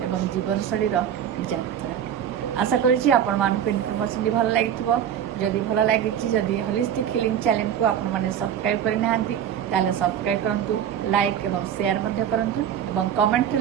जीवनशैलीर यात्रा आशा करुँची आपण मानक इनफर्मेशन भल लगी जदि भल लगी जदि होलिस्टिक हिलिंग चैनल को आपण माने सब्सक्राइब करना ताले सब्सक्राइब करंतु लाइक एवं शेयर मध्य करंतु एवं कमेंट रे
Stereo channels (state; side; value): quieter; left; 9.5 dB